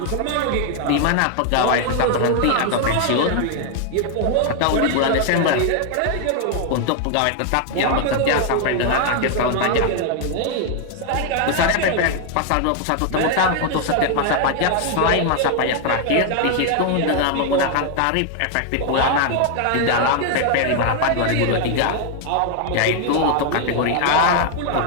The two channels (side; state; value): both; different; correlation 0.00